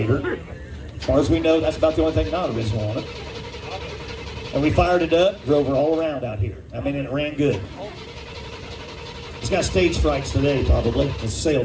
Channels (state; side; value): identical; both; correlation 1.00